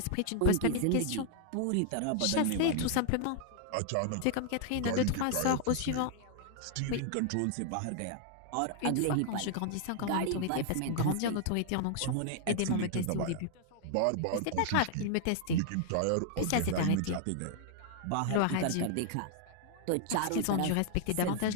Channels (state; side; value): different; both; correlation 0.00